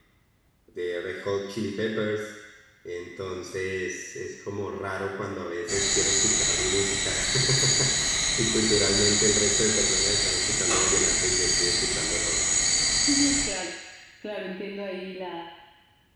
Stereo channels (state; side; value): identical; both; correlation 1.00